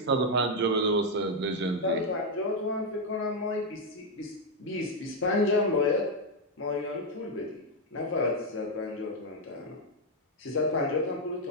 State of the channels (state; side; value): normal; both; correlation 0.02